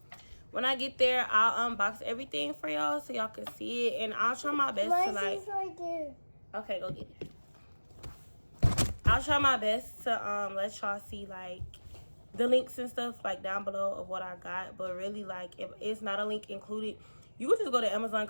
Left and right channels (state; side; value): inverted; both; correlation -1.00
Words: When I get there, I'll unbox everything for y'all so y'all can see it, and I'll try my best to like. Right there. Okay, go get it. I'll try my best to let y'all see like the links and stuff like down below of what I got, but really like if it's not a link included, you can just go to Amazon